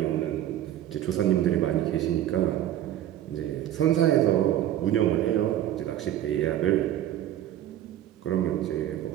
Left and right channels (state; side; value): quieter; left; 12.1 dB